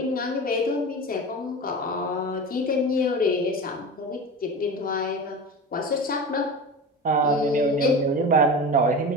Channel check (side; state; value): both; normal; correlation 0.29